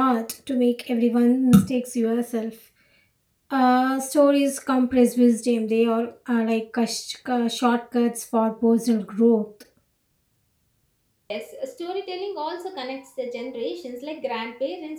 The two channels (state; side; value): identical; both; correlation 1.00